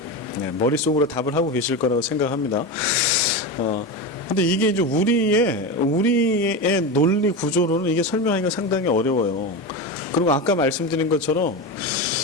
네, 머릿속으로 답을 하고 계실 거라고 생각합니다. 근데 이게 이제 우리의 논리 구조로는 이게 설명하기가 상당히 어려워요. 그리고 아까 말씀드린 것처럼,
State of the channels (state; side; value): normal; both; correlation 0.20